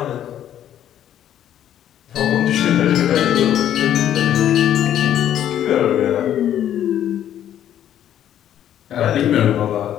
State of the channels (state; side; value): quieter; right; 10.8 dB